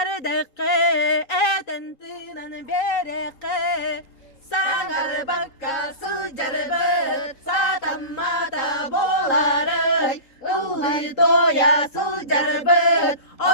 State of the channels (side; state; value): right; late; 3.8 ms